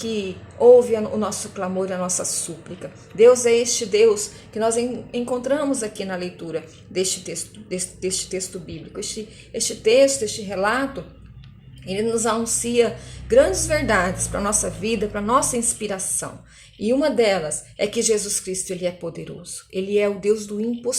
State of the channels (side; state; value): both; identical; correlation 1.00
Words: ouve o nosso clamor, a nossa súplica. Deus é este Deus que nós encontramos aqui na leitura deste texto bíblico. Este relato, ele nos anuncia grandes verdades para a nossa vida, para a nossa inspiração. E uma delas é que Jesus Cristo, ele é poderoso. Ele é o Deus do